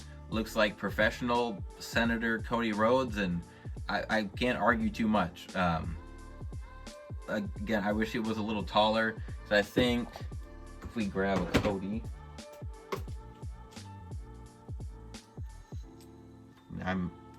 looks like professional Senator Cody Rhodes, and I can't argue too much. Again, I wish it was a little taller, so I think if we grab a Cody, I'm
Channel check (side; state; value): both; identical; correlation 1.00